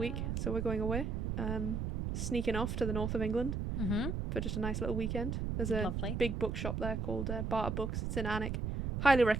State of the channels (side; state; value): right; noise; rumble, 2 dB below the sound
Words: so we're going away. Sneaking off to the north of England for just a nice little weekend. There's a big bookshop there called Barter Books. It's in Alnwick. Highly